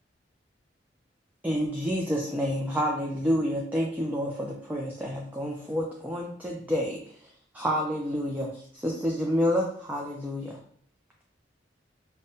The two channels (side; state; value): both; normal; correlation 0.68